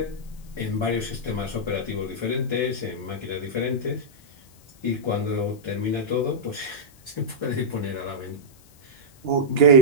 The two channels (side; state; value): left; noise; hiss, 27 dB below the sound